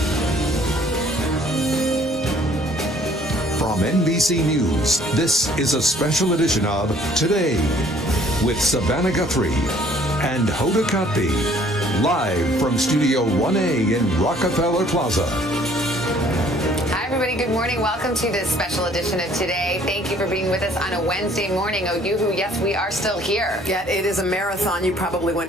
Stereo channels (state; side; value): normal; both; correlation 0.58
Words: From NBC News, this is a special edition of Today with Savannah Guthrie and Hoda Kotb, live from Studio 1A in Rockefeller Plaza. Hi, everybody. Good morning. Welcome to this special edition of Today. Thank you for being with us on a Wednesday morning. Oh, yoo-hoo, yes, we are still here. Yeah, it is a marathon. You probably